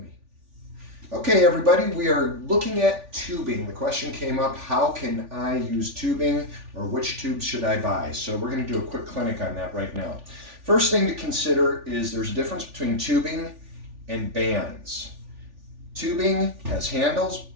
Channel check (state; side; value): late; left; 3.4 ms